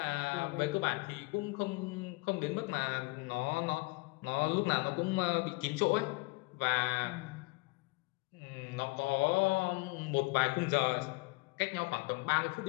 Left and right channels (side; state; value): right; quieter; 26.8 dB